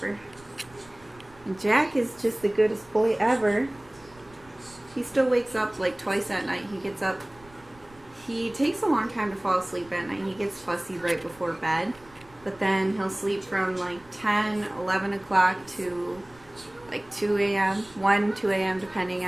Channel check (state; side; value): noise; right; rumble, 26 dB below the sound